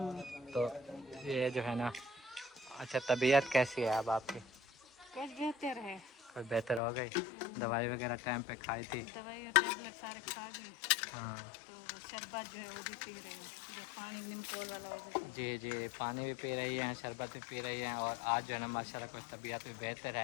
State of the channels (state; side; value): drops out; right; at 6.8 s